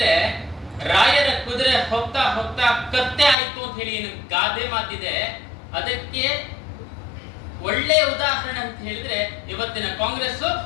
ರಾಯರ ಕುದುರೆ ಹೋಗ್ತಾ ಹೋಗ್ತಾ ಕತ್ತೆ ಆಯ್ತು ಅಂತ ಹೇಳಿ ಏನು ಗಾದೆ ಮಾತಿದೆ, ಅದಕ್ಕೆ ಒಳ್ಳೆಯ ಉದಾಹರಣೆ ಅಂತ ಹೇಳಿದ್ರೆ ಇವತ್ತಿನ ಕಾಂಗ್ರೆಸ್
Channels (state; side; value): drops out; right; at 3.4 s